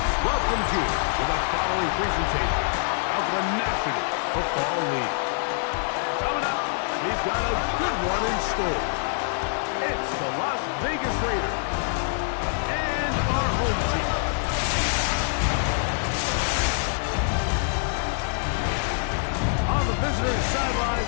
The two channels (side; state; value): right; silent; 59 dB below the other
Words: welcomes you to the following presentation of the National Football League. Coming up, we've got a good one in store. It's the Las Vegas Raiders and our home team. On the visitors' sideline,